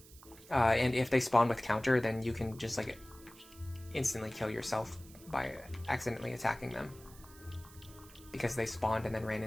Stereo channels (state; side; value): noise; right; hiss, 21 dB below the sound